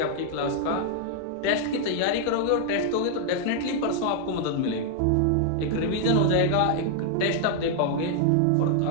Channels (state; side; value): different; both; correlation 0.00